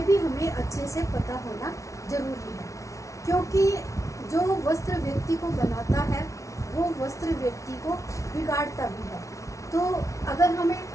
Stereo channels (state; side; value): late; right; 0.15 ms